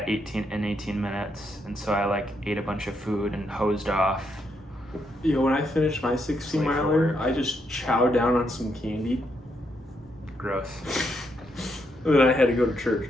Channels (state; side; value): normal; both; correlation 0.78